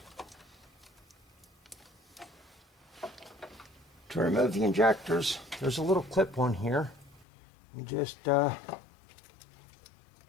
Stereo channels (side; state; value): right; drops out; at 7.2 s